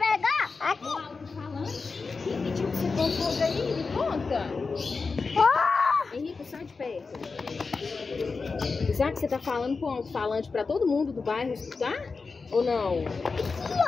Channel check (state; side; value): quieter; right; 4.4 dB